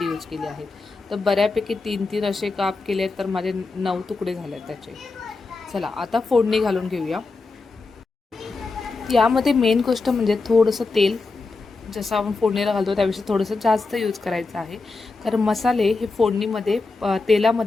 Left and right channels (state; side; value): quieter; right; 3.8 dB